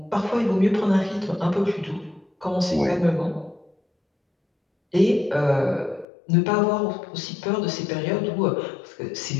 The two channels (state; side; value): drops out; right; at 6.1 s